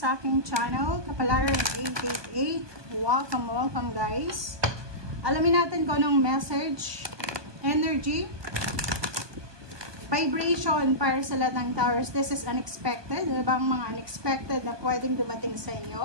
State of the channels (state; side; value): late; left; 1.2 ms